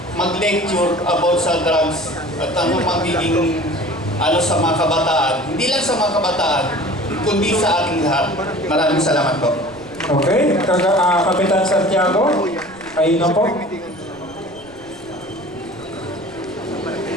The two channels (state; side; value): noise; right; rumble, 26 dB below the sound